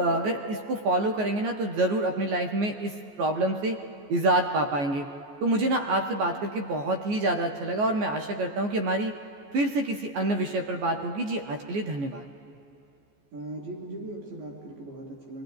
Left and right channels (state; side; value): late; left; 14 ms